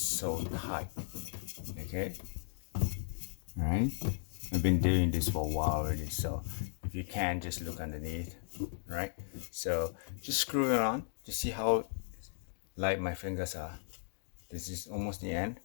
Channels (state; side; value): silent; right; digital silence